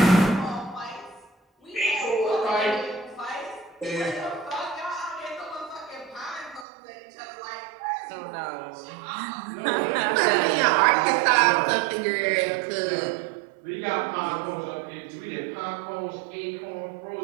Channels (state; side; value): drops out; left; at 6.7 s